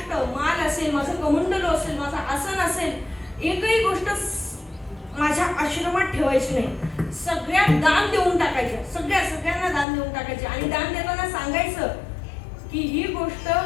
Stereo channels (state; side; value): drops out; right; at 9.9 s